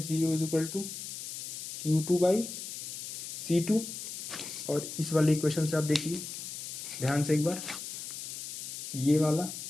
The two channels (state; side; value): noise; left; hiss, 8 dB below the sound